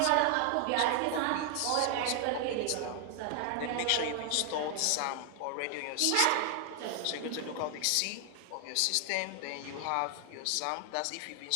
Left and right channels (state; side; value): different; both; correlation 0.00